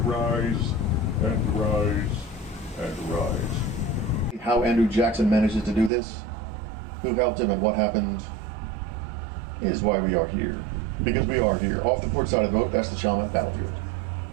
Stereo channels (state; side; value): drops out; left; at 5.9 s